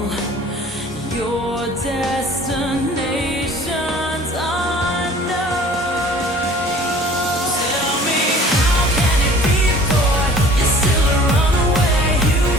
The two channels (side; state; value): both; normal; correlation 0.49